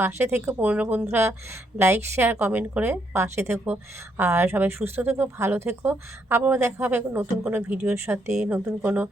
পাশে থেকো, পুরনো বন্ধুরা লাইক শেয়ার কমেন্ট করে পাশে থেকো। আর সবাই সুস্থ থেকো, ভালো থেকো। আবারও দেখা হবে নতুন কোনো ভিডিওর সাথে, নতুন কোনো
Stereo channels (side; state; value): both; normal; correlation 0.74